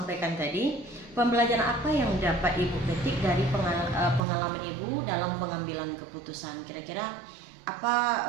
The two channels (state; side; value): drops out; left; at 4.2 s